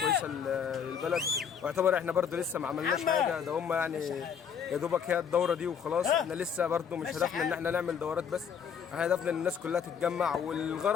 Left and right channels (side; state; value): right; quieter; 7.4 dB